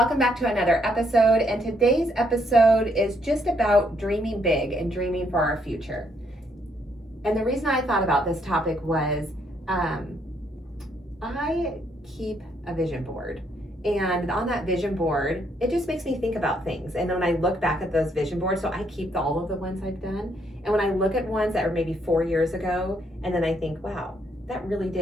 back to another episode. And today's episode is just about dreaming big and dreaming for our future. And the reason I thought about this topic was I keep a vision board. And on that vision board, it just makes me think about things. And when I look back at those vision boards, so I keep all of the ones I've done. And when I look at ones that were maybe 4 years ago, and then I think, wow, that really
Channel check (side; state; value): both; normal; correlation 0.72